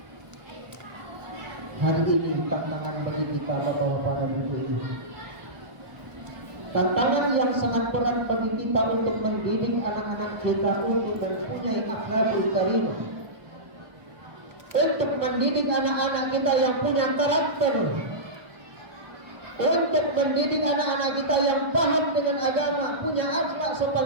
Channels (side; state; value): left; late; 1.2 ms